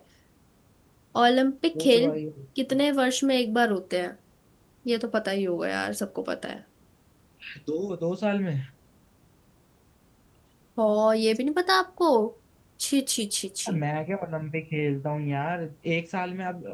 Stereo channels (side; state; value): both; identical; correlation 1.00